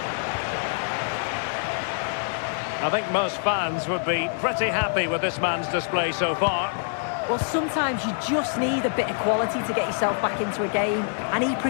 I think most fans would be pretty happy with this man's display so far. Well, sometimes you just need a bit of quality to get yourself back into a game, and he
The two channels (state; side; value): silent; right; digital silence